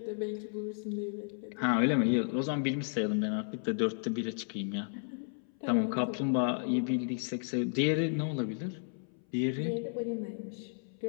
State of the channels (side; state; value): right; silent; 56 dB below the other